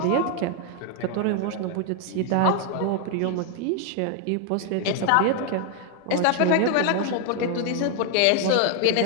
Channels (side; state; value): both; different; correlation 0.01